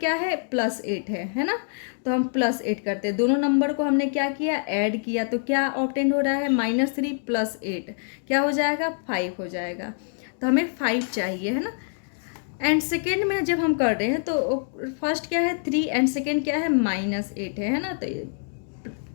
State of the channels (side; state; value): right; silent; 61 dB below the other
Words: है, +8 है ना। तो हम +8 करते हैं, दोनों नंबर को हमने क्या किया, ऐड किया। तो क्या ऑब्टेन हो रहा है, -3 + 8 क्या हो जाएगा, 5 हो जाएगा। तो हमें 5 चाहिए, है ना। एंड सेकेंड में जब हम कर रहे हैं तो फर्स्ट क्या है, 3 एंड सेकेंड क्या है, -8 है ना। तो